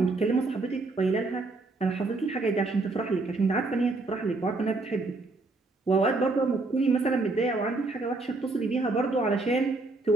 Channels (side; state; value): left; quieter; 3.3 dB